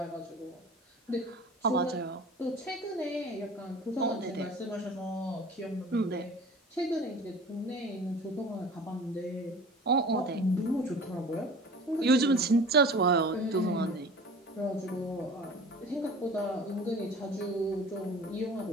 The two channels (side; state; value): both; normal; correlation 0.42